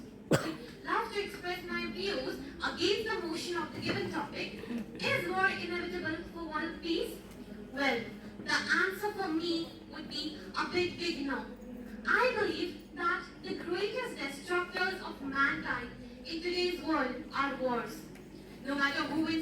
would love to express my views against the motion of the given topic. Is war inevitable for world peace? Well, the answer for me would be a big no. I believe that the greatest destructors of mankind in today's world are wars. No matter who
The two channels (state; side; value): identical; both; correlation 1.00